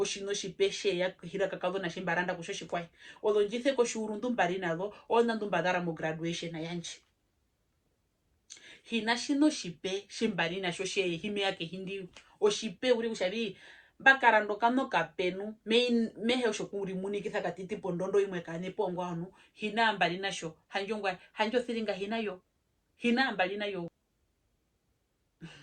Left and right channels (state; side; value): identical; both; correlation 1.00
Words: shipe she ya hira kakado na shimbaranda kushoshi kwai odo njithe ko shuru ndumbari nalo ona ndumbadara mo graduation na yanchi hinashino shipe shimbari na shoshe hime yake hindi oshipe uri kushabi bakarando kano kapenu mehe oshokuri munikitha katiti pondondo imwe kane pongo anu hina mbali nasho hanjongwa hanjo thiringa hinayo hina mbali nayo